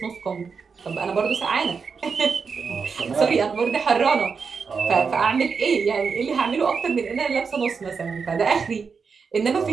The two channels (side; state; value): left; quieter; 5.5 dB